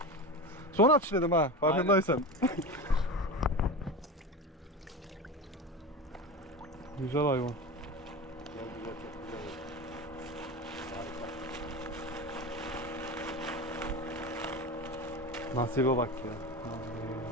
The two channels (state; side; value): normal; both; correlation 0.26